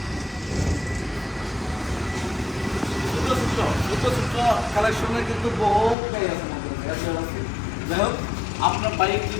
ছোট কালেকশনের কিন্তু বহু গাড়ি আছে আমাদের কাছে। যাই হোক, আপনার বাইক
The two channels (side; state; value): right; drops out; at 6.0 s